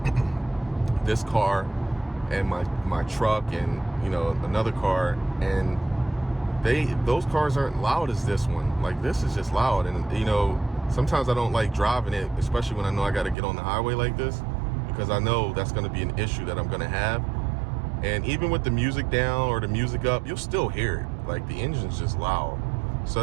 this car and my truck and, you know, another car, and those cars aren't loud as this one. Like, this is just loud. And, you know, sometimes I don't like driving it, especially when I know I got to get on the highway like this, because I know that's going to be an issue that I'm going to have. And even with the music down or the music up, you'll still hear it. Like, the engine's just loud. So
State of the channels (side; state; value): left; drops out; at 13.4 s